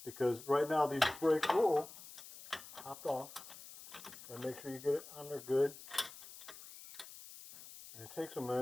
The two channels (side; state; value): left; noise; hiss, 16 dB below the sound